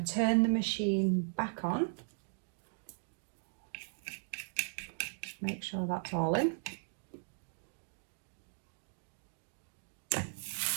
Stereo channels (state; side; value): silent; left; digital silence